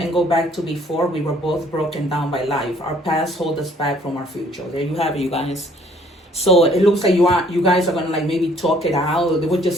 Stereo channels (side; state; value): both; normal; correlation 0.60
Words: go back to before we were both broken down by life? Our past hold us back from our future. There you have it, you guys. So it looks like you guys are going to maybe talk it out. There were